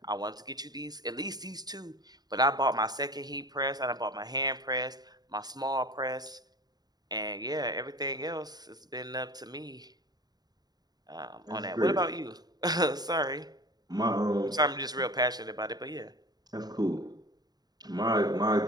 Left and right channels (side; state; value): left; late; 0.19 ms